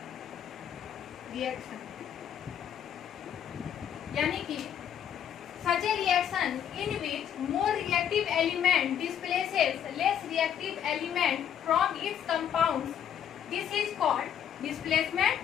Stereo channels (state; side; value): quieter; right; 9.3 dB